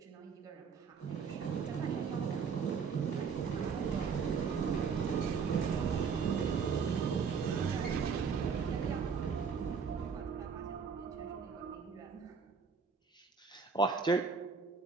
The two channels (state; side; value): quieter; left; 5.8 dB